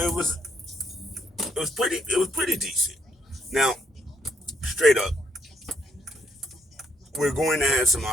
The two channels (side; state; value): both; normal; correlation 0.71